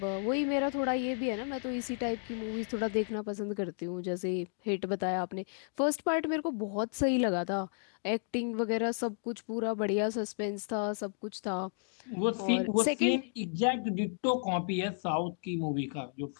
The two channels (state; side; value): silent; right; digital silence